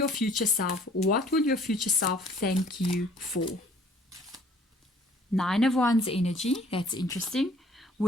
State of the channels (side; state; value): both; normal; correlation 0.56